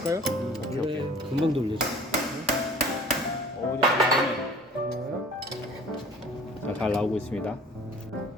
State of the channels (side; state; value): both; normal; correlation 0.48